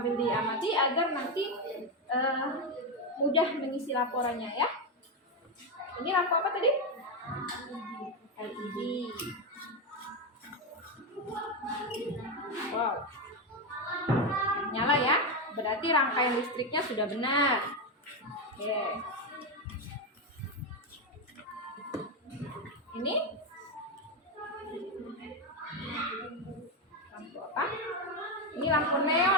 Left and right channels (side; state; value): both; normal; correlation 0.09